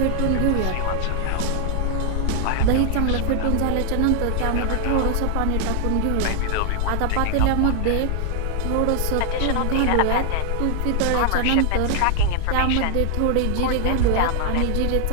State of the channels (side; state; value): both; different; correlation 0.00